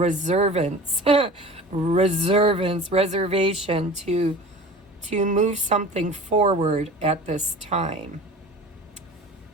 to move something forward at this time.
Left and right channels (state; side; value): normal; both; correlation 0.39